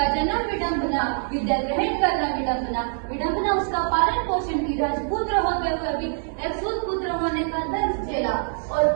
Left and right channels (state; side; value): silent; left; digital silence